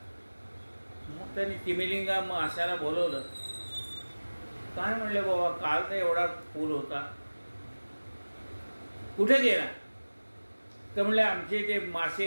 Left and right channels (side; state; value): both; inverted; correlation -1.00